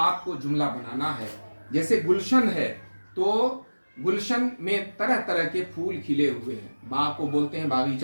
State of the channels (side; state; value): both; inverted; correlation -1.00